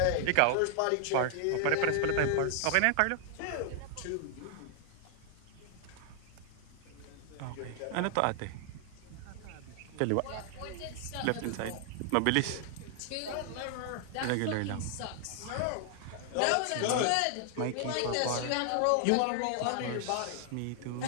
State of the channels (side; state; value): both; different; correlation 0.00